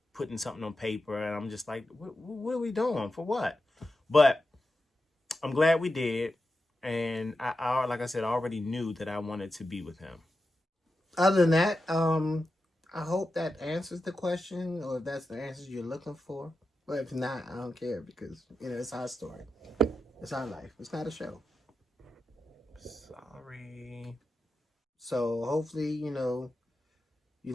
putting something on paper. And I'm just like, what are we doing? For what? But I'm glad we did. And I like I said, I already knew that I wanted to be with him. Other than that, I hope that answers the question, or if that's the answers you're looking for. But if not, I don't care, because, it's our story. It's our life. It's not a show. Sorry. So hopefully, you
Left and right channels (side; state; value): both; normal; correlation 0.90